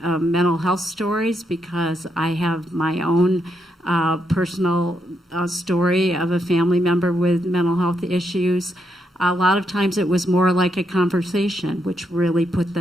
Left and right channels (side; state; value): both; normal; correlation 0.80